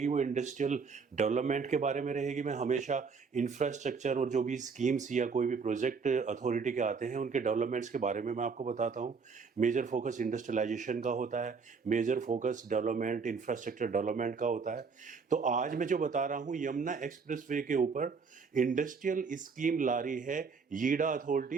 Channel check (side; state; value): left; quieter; 5.2 dB